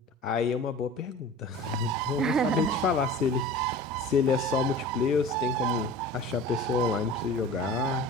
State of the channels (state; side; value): normal; both; correlation 0.39